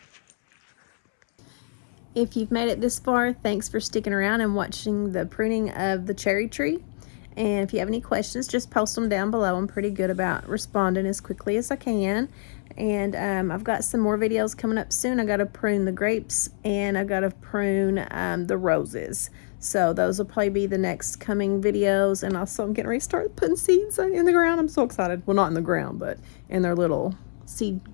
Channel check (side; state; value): right; silent; 61 dB below the other